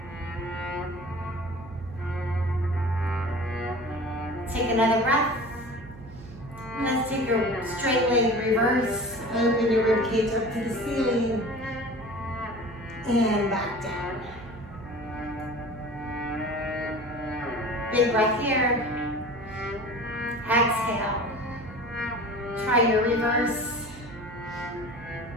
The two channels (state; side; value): noise; right; hum, 17 dB below the sound